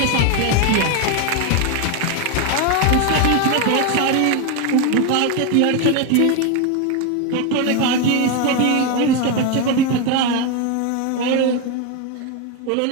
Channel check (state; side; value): different; both; correlation 0.02